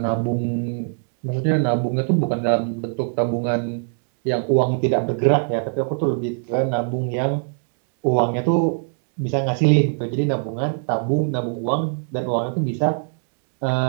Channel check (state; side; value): silent; left; 64 dB below the other